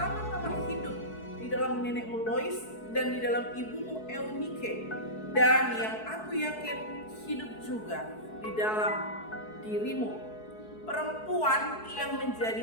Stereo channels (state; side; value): late; right; 4.6 ms